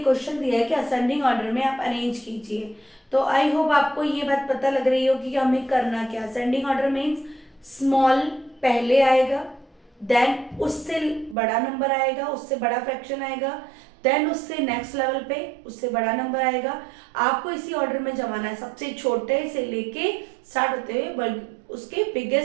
क्वेश्चन दिया है कि असेंडिंग ऑर्डर में आप अरेंज कीजिए। तो आई होप आपको ये बात पता लग रही होगी कि हमें करना क्या। असेंडिंग ऑर्डर मीन्स स्मॉल पहले आएगा, देन उससे बड़ा नंबर आएगा, उससे बड़ा फ्रैक्शन आएगा, देन उससे नेक्स्ट लेवल पे उससे बड़ा नंबर आएगा। आपको इसी ऑर्डर में जमाना है, सबसे छोटे से लेके स्टार्ट होते हुए उसके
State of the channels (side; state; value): left; drops out; at 11.4 s